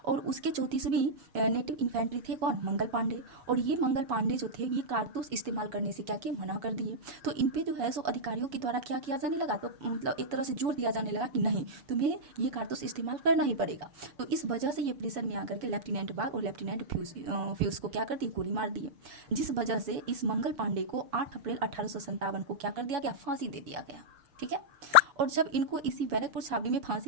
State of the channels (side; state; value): left; late; 6.6 ms